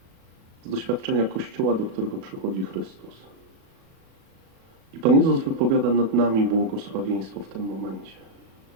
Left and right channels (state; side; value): late; left; 36 ms